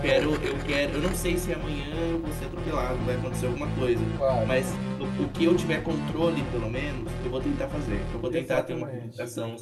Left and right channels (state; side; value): identical; both; correlation 1.00